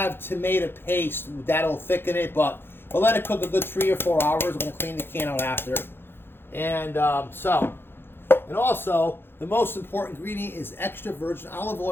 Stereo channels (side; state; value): right; late; 0.10 ms